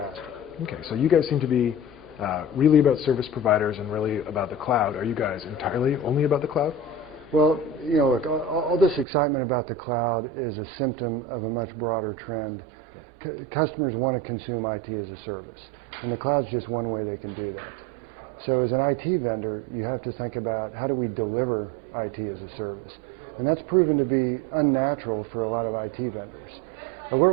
Okay, so you guys seem to be really about service providers and really about the cloud. Are you guys entirely only about the cloud? Well, you know, look, all this excitement about the cloud is a symptom of a much broader trend. Okay. Customers want to consume IT as a service, and the cloud's just one way they can do that. So as an IT vendor, you have to think about how do we deliver IT as a service. And that's proven to be unnatural for a lot of IT vendors.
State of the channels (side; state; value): left; drops out; at 9.1 s